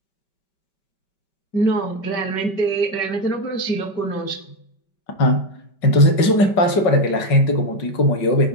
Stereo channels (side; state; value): right; late; 5.2 ms